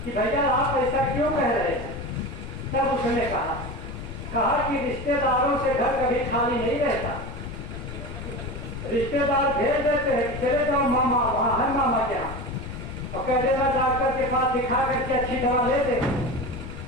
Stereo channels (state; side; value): noise; left; rumble, 10 dB below the sound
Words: कि भैया आप ऐसा क्यों कह रहे हैं। तब उसने कहा कि रिश्तेदारों से घर कभी खाली नहीं रहता, रिश्तेदार भेज देते हैं कि चले जाओ मामा, वहां है मामा के यहाँ, और कह देना डॉक्टर के पास दिखा करके अच्छी दवा ले दे,